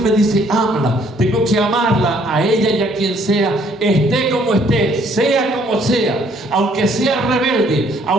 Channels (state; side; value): normal; both; correlation 0.64